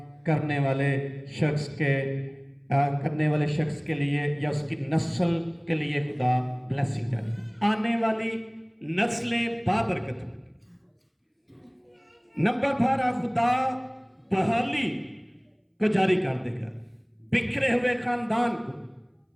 करने वाले शख्स के लिए या उसकी नस्ल के लिए खुदा ब्लेसिंग जारी, आने वाली नस्लें बाबरकत होंगी। नंबर 12 खुदा बहाली को जारी कर देगा। बिखरे हुए खानदान को,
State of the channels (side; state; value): both; identical; correlation 1.00